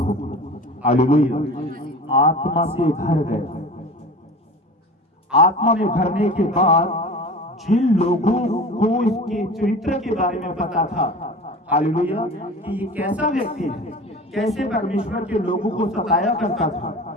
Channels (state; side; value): normal; both; correlation 0.36